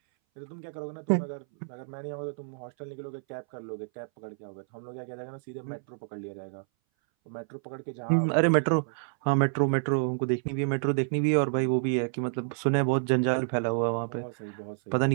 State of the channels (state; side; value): silent; left; 58 dB below the other